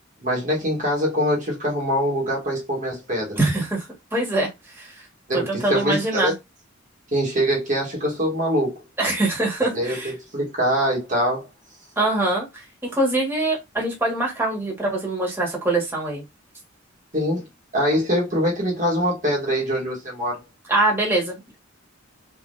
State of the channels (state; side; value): normal; both; correlation 0.33